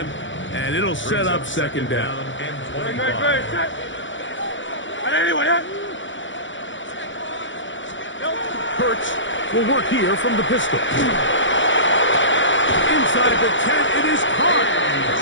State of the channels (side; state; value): right; late; 0.55 ms